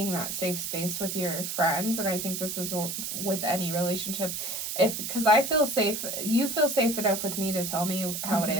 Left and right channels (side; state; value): right; noise; hiss, 4 dB below the sound